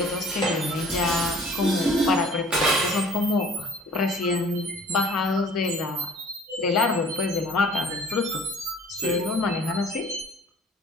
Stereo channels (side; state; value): both; normal; correlation 0.51